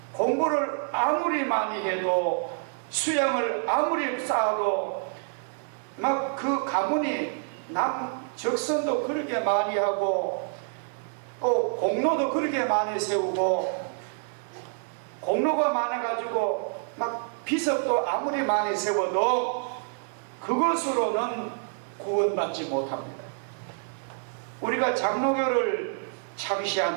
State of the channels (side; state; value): left; silent; 60 dB below the other